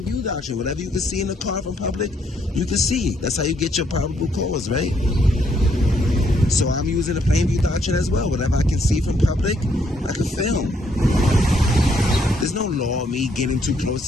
view doctrine. Whatever you can see in the car from public, you can see. That's how you get your probable cause, right? So I'm using the plain view doctrine as well. Whatever I can see from public, I can film. There's no law of me getting too close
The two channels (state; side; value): normal; both; correlation 0.71